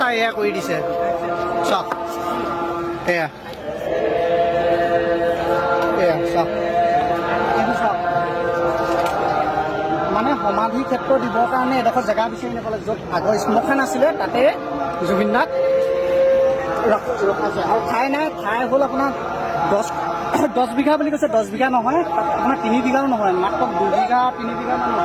এয়া কৰি দিছে চাওক এয়া এয়া চাওক এইটো চাওক মানে সমাধি ক্ষেত্ৰ দিবৰ কাৰণে এডোখৰ জেগা বিচাৰি নাপালে য'ত আগৰ শ্মশান আছিলে তাতে জুবিন দাক ৰখাইছে আৰু ঠাই নাই ঠাই হ'ল আপোনাৰ 10 বিঘা বুলি কৈছে 10 বিঘা নহয় আপোনাৰ 3 বিঘাও নহয় মাত্ৰ 2 বিঘা 3 বিঘামান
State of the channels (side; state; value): both; identical; correlation 1.00